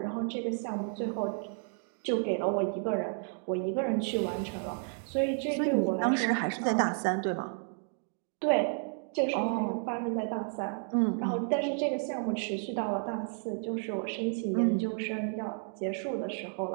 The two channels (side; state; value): left; silent; 57 dB below the other